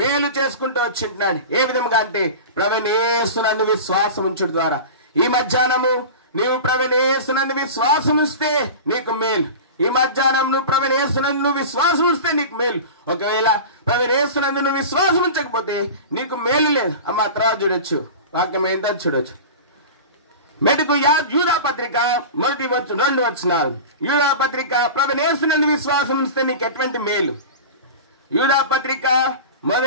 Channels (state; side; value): inverted; both; correlation -0.31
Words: చేసుకుంటూ వచ్చింటున్నాడు. ఏ విధంగా అంటే ప్రభువైన యేసునందు విశ్వాసం ఉంచుట ద్వారా. ఈ మధ్యాహ్నము నీవు ప్రభువైన యేసునందు విశ్వాసం ఉంచితే నీకు మేలు. ఈ మధ్యాహ్నం నువ్వు ప్రభువైన యేసునందు విశ్వాసం ఉంచితే నీకు మేలు. ఒకవేళ ప్రభువైన యేసునందు నువ్వు విశ్వాసం ఉంచకపోతే నీకు మేలు లేదు. అమ్మ తర్వాత చూడొచ్చు, వాక్యం ఏంటో చూడొచ్చు. మెటుకు యూదా పత్రిక 1-2 వచనాలు. యూదా పత్రిక ప్రభువైన యేసునందు విశ్వాసం ఉంచితే నీకు ఎటువంటి మేలు. యూదా పత్రిక